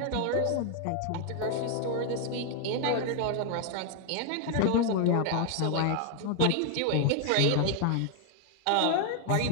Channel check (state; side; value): different; both; correlation 0.00